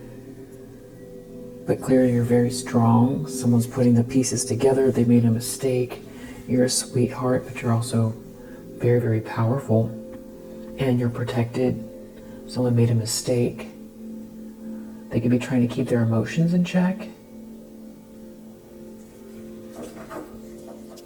but clearly you're very strong. Someone's putting the pieces together. They made a mistake. You're a sweetheart, but you're also very, very powerful, and you're protected. Someone made a mistake. They could be trying to keep their emotions in check.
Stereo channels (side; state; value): both; identical; correlation 1.00